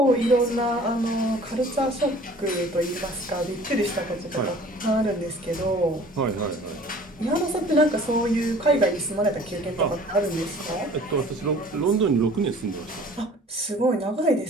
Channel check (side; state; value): both; normal; correlation 0.49